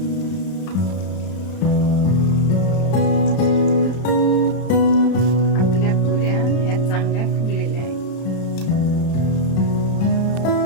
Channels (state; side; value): late; right; 31 ms